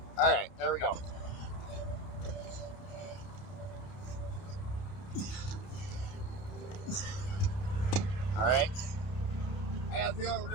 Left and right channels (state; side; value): late; right; 30 ms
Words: All right, there we go. All right. I got a feeling we're